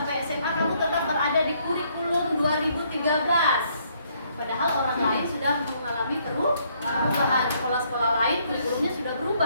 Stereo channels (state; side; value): inverted; both; correlation -0.68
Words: SMA kamu tetap berada di kurikulum 2013. Padahal orang lain sudah mengalami perubahan. Sekolah-sekolah lain kurikulumnya sudah